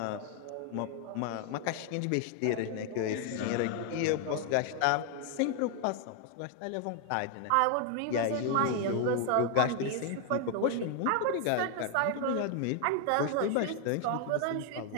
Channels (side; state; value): both; different; correlation 0.00